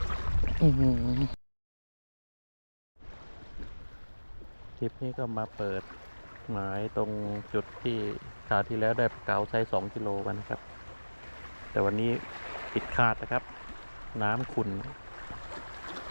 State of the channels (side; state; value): both; inverted; correlation -1.00